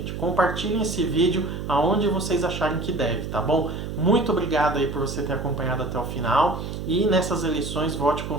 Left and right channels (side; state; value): right; noise; hum, 6 dB below the sound